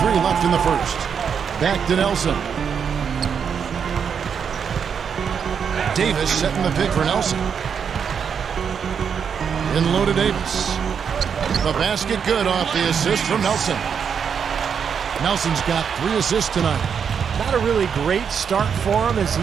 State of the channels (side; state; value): left; quieter; 7.0 dB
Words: left in the first. Back to Nelson. Davis setting the pick for Nelson. In low to Davis. The basket good off the assist from Nelson. Nelson's got 3 assists tonight. Not a really great start for him as